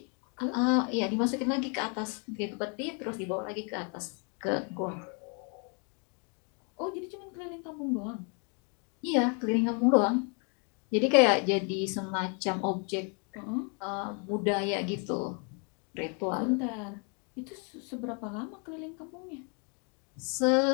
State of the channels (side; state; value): right; quieter; 36.9 dB